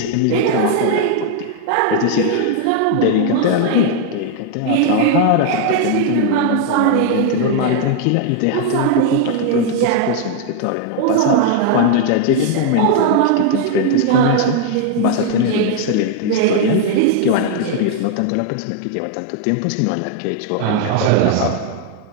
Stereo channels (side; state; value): both; different; correlation 0.00